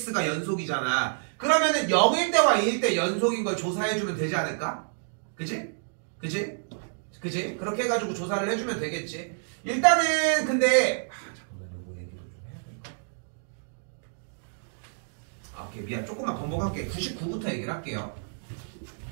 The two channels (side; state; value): left; silent; digital silence